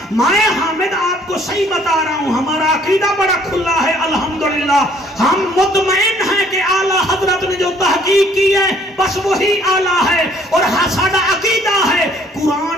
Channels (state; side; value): normal; both; correlation 0.61